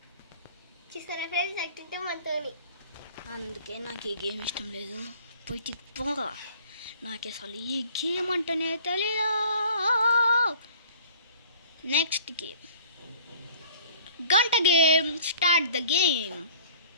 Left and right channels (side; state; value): both; inverted; correlation -0.50